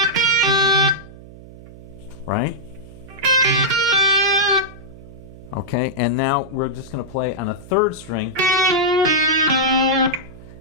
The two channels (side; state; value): right; noise; hum, 18 dB below the sound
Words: Right? Okay, and now we're just going to play on a 3rd string.